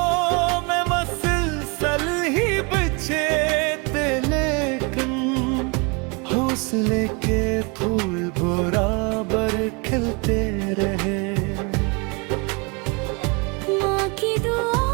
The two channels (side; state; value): left; quieter; 30.8 dB